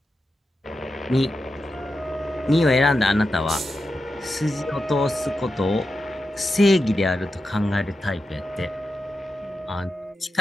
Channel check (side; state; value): both; normal; correlation 0.89